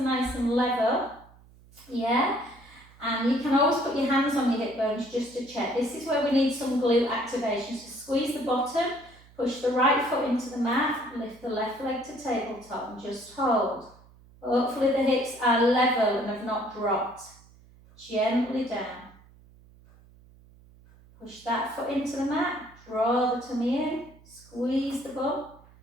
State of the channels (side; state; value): right; noise; hum, 25 dB below the sound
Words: nice and level. Yeah? And you can always put your hands on your hip bones just to check. This is where we need some glute activation. So squeeze the bottom, push the right foot into the mat, lift the left leg to tabletop and just hold. Hopefully the hips are level and have not dropped. Gently down. Push that foot into the mat, draw the tummy in, squeeze the bum,